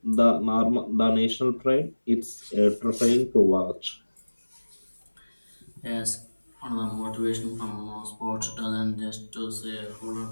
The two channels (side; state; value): both; inverted; correlation -1.00